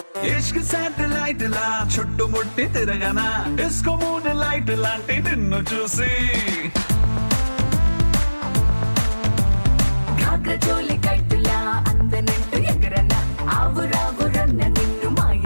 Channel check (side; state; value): both; inverted; correlation -1.00